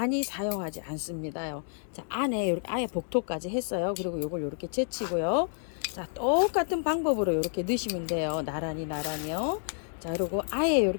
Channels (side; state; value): right; silent; 58 dB below the other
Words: 사용하지 않습니다요. 자, 안에 이렇게 아예 복토까지 했어요. 그리고 요걸 이렇게 제치고요. 자, 똑같은 방법으로 이렇게 넣으시면 돼요. 나란히요. 자, 그리고 아예